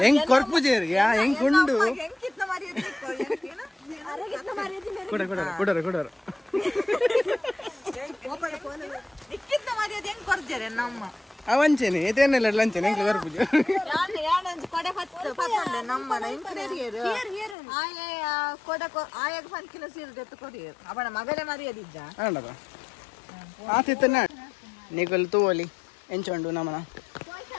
ಹೆಂಗ್ ಕೊರ್ಪುಜೇರಿ ಹೆಂಗ್ ಕುಂಡು ಕೊಡರ ಅವಂಚೇನೆ ಏತೇನೆಲ್ಲ ಲಂಚನೆ ಹೆಂಗ್ ಕೊರ್ಪುಜೆ ಆತಿತ್ತ ನಿಗಲ್ ತೂವಲಿ ಎಂಚೊಂಡು ನಮ್ಮನ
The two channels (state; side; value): drops out; right; at 17.6 s